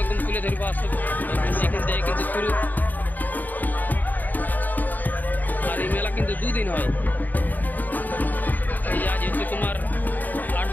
একদম তুলে ধরবো, আসলে এখান থেকে কিন্তু শুরু। আর এই মেলা কিন্তু দুদিন হয়, এই আজ হচ্ছে তোমার 8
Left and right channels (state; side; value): late; right; 0.086 ms